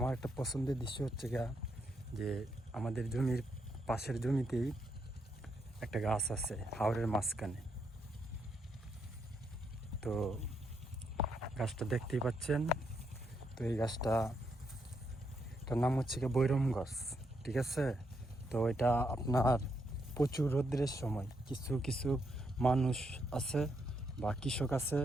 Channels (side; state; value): both; normal; correlation 0.78